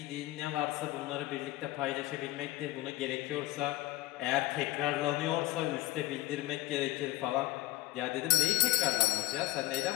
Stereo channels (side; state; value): right; quieter; 18.2 dB